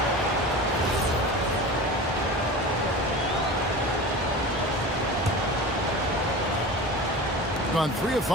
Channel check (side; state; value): both; normal; correlation 0.33